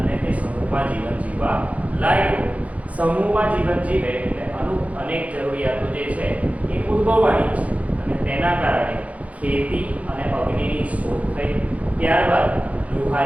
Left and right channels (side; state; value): left; late; 0.067 ms